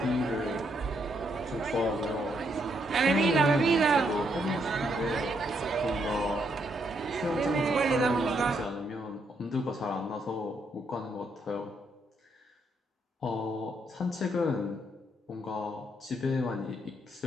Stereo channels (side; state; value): both; normal; correlation 0.75